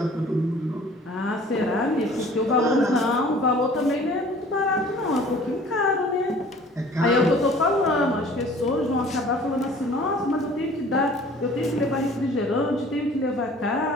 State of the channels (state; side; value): normal; both; correlation 0.49